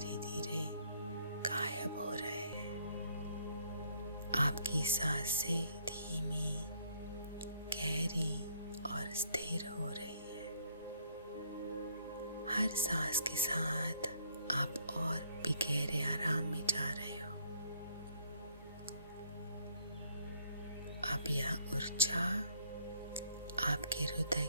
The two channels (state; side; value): inverted; both; correlation -0.67